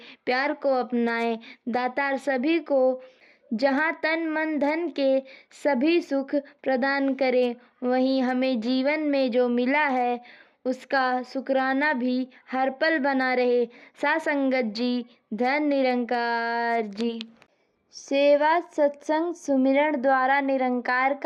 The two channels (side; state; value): both; identical; correlation 1.00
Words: प्यार को अपनाएं। दातार सभी को जहाँ तन मन धन के सभी सुख प्रदान करें। वहीं हमें जीवन में जो मिला है उसका शुक्राना भी हर पल बना रहे। साध संगत जी, धन निरंकार जी। सेवा, सत्संग, सुमिरन द्वारा निरंकार